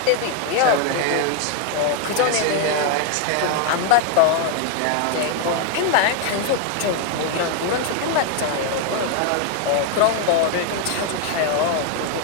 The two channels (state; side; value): different; both; correlation 0.00